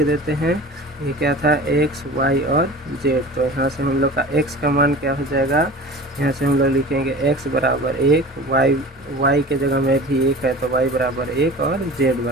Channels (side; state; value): both; normal; correlation 0.38